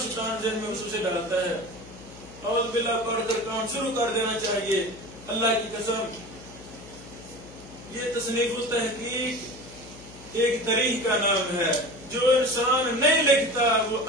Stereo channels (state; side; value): noise; left; hum, 18 dB below the sound